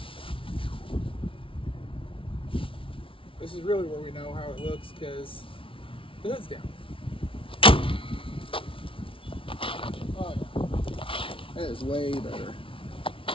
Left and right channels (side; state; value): right; late; 0.25 ms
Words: This is really where we know how it looks because the hood's down. Oh yeah. That is way better. I